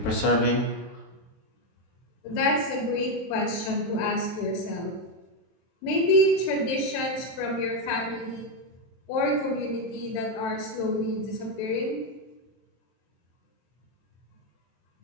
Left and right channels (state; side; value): late; right; 23 ms